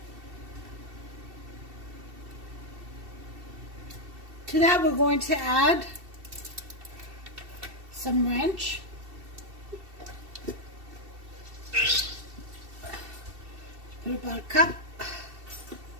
To that, we're going to add some ranch. Put about a cup.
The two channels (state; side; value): late; left; 2.7 ms